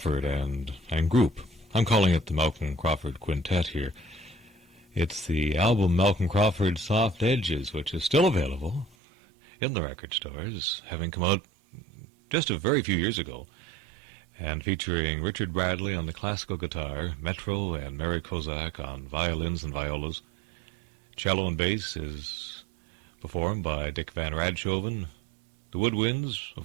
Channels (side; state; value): left; drops out; at 9.0 s